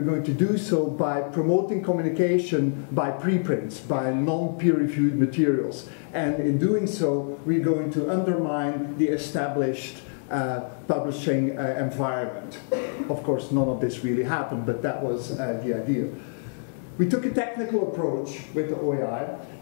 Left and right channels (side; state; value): right; silent; digital silence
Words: going to do so by promoting communication by preprints, by non-peer-reviewed materials. And in doing so, we're going to undermine the established publishing environment. Of course, none of this really happened, but that was the idea. We took a technical approach with the OAI,